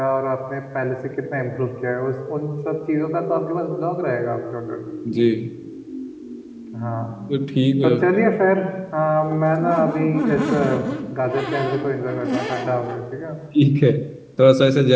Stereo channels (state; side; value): identical; both; correlation 1.00